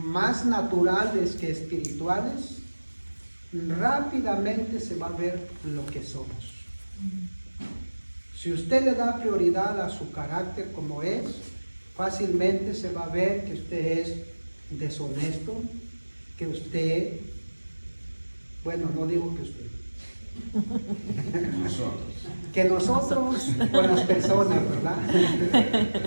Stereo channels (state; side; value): inverted; both; correlation -1.00